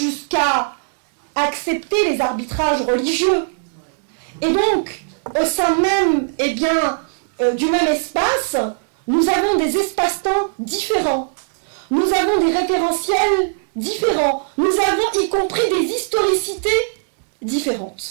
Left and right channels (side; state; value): left; silent; digital silence